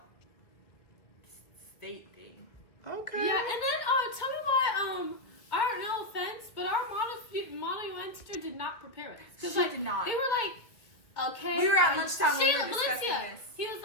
state thing. okay. Yeah, and then tell me why our no offense, but our model UN teacher did not prepare us. 'Cause, She like, did not. They were like, okay. We were at lunchtime when we were Shayla, discussing Valencia, this. he was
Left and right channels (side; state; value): right; late; 1.7 ms